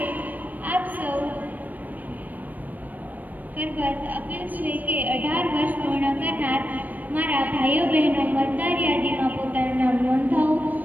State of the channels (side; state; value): left; late; 0.083 ms